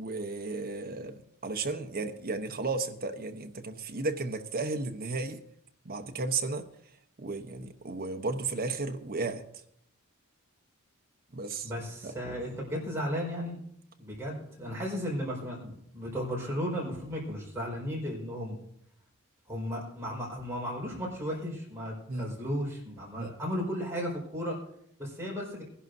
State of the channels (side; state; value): both; normal; correlation 0.34